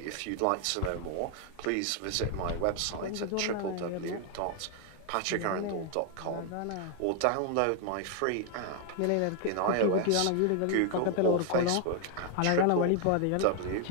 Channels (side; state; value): both; different; correlation 0.00